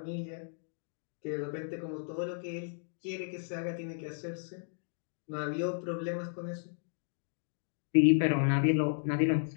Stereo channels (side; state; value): right; silent; digital silence